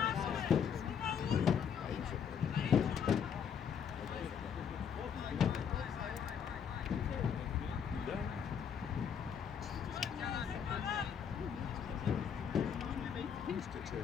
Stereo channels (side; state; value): right; quieter; 7.5 dB